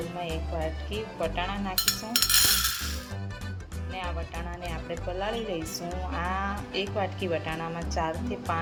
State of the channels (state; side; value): identical; both; correlation 1.00